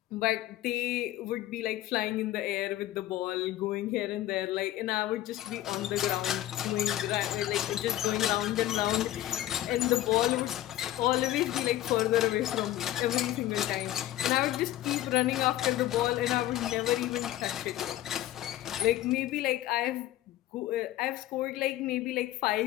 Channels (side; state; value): right; quieter; 14.1 dB